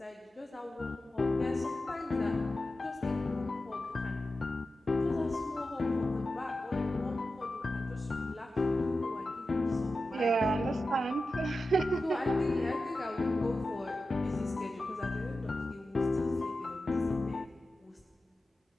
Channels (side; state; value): both; normal; correlation 0.92